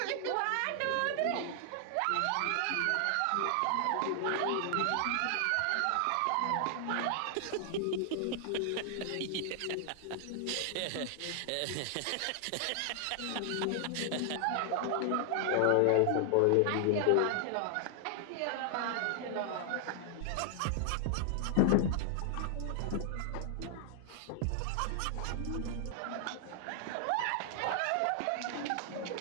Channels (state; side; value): different; both; correlation 0.00